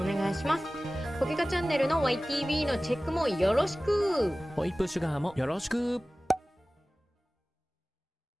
願いします。ポケカチャンネルの YTV のチェックもよろしく。ホイップシュガーもよろしく。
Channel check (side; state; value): both; normal; correlation 0.97